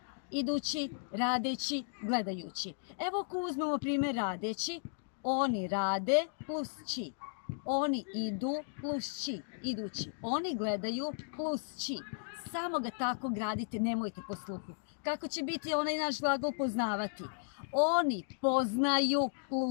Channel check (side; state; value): right; silent; digital silence